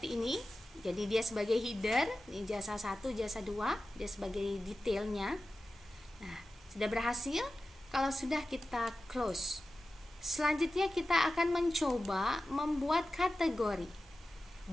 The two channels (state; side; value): normal; both; correlation 0.94